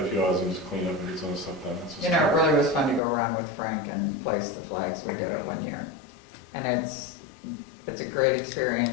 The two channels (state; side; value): drops out; right; at 3.0 s